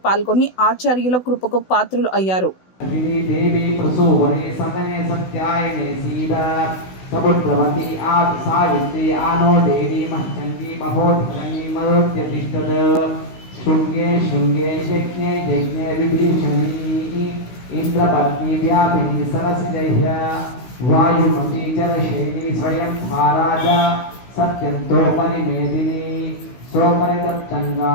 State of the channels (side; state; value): right; late; 16 ms